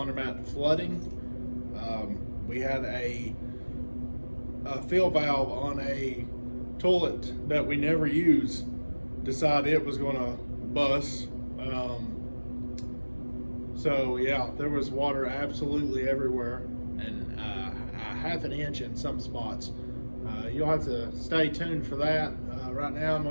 flooding. We had a fill valve on a toilet that we never use decide it was going to bust. So yeah, there was water absolutely everywhere, and a half an inch in some spots. You'll have to stay tuned for that. Right now I'm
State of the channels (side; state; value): both; inverted; correlation -1.00